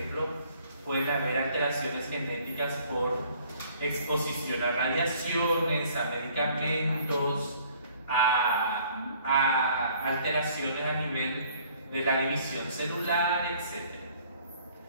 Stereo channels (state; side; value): inverted; both; correlation -0.58